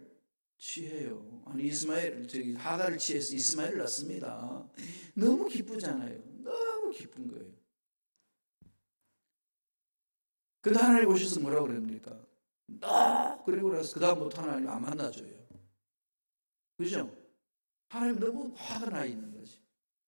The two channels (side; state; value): both; inverted; correlation -1.00